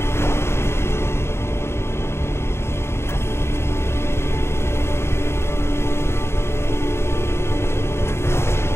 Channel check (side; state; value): right; late; 0.12 ms